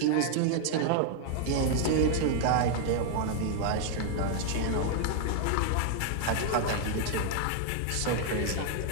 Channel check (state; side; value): different; both; correlation 0.00